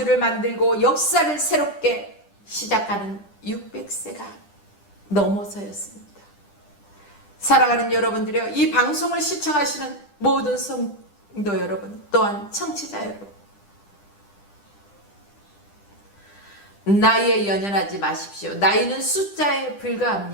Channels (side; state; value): right; late; 10 ms